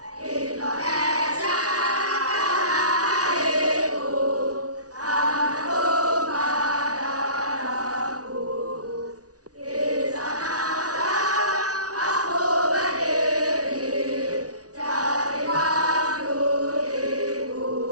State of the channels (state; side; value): late; left; 0.68 ms